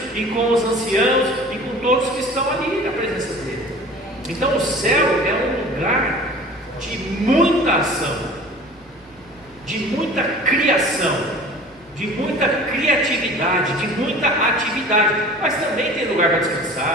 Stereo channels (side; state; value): both; normal; correlation 0.43